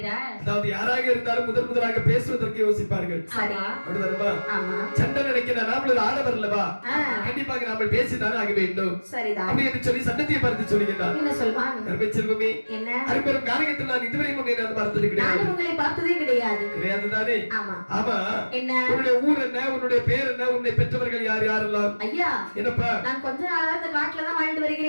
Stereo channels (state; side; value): inverted; both; correlation -1.00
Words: அதாவது யாராக இருந்தாலும் முதலாக பேசுவதற்கு யோசிப்பார்கள். சண்டை நினைக்கிறார், நாமளும் ஆடவர் அல்லவா, கண்டிப்பாக நாம பேசிதான் ஆக வேண்டும் அப்படி என்று சொல்லி சண்டத்தியை பார்த்து சொல்லுகிறார். செல்வமே, அரும்பெரும் காரகத்தில் நான் இதுவரை பார்த்தது கிடையாது. கிடையாது தானே? ஆமா. உன்னுடைய ஊர் என்ன, உன்னுடைய பேர் என்ன, உன்னை பெற்றவர்கள் யார் யாரெல்லாம்? ஐயா, என்னப்பா, நான் கொஞ்ச நாளா இந்த காட்டுல தான் வாழ்ந்து